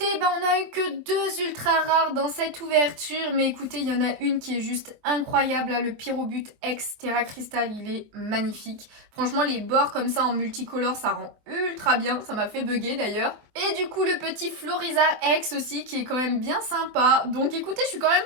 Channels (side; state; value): left; late; 23 ms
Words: ben on a eu que 2 ultra rares dans cette ouverture. Mais écoutez, il y en a une qui est juste incroyable. Là, le Pyrobut X Terra Crystal, il est magnifique. Franchement, les bords comme ça en multicolore, ça rend ultra bien. Ça m'a fait bugger d'ailleurs. Et du coup, le petit Florizard X aussi, qui est quand même bien sympa. Donc écoutez, je suis quand